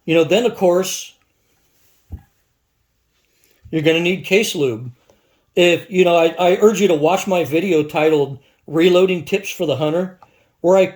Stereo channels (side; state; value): both; identical; correlation 1.00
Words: Then of course, you're going to need case lube. I urge you to watch my video titled Reloading Tips for the Hunter, where